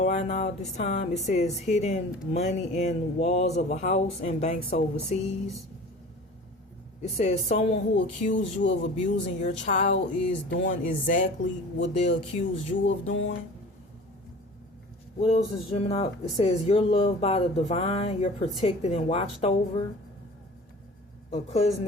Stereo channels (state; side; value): normal; both; correlation 0.41